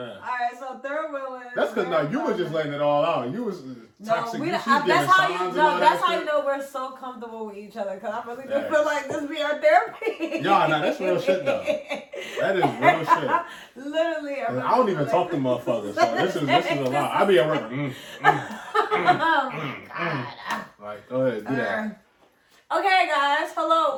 All right, so third wheeling. That's because no, you was just letting it all out. You was toxic. No, that's how you know we're so comfortable with each other. Because I really do feel like this be our therapy. Nah, that's real shit though. That is real shit. Literally, I don't even talk to motherfuckers. So this is a lot. I be at work. Like, go ahead, do that. Okay, guys.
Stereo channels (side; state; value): both; identical; correlation 1.00